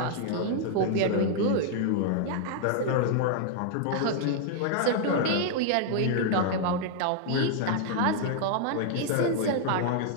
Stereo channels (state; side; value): different; both; correlation -0.01